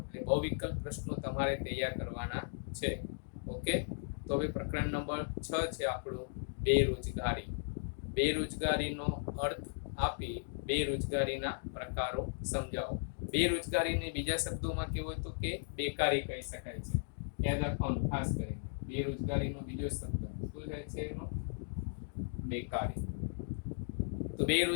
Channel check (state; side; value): silent; right; digital silence